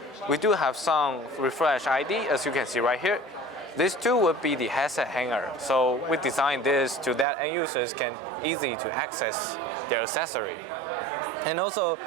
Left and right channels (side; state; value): left; drops out; at 7.2 s